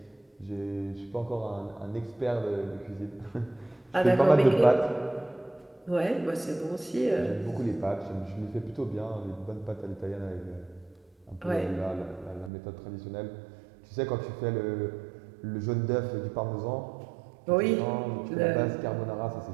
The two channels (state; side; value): drops out; left; at 12.5 s